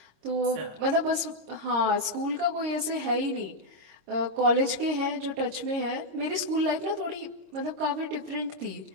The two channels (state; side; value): late; left; 26 ms